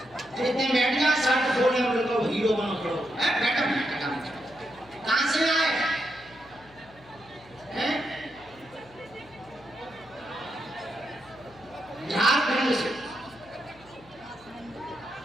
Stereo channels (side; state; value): left; noise; hum, 25 dB below the sound